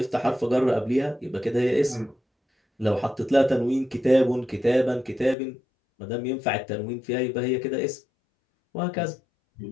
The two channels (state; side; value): drops out; right; at 5.4 s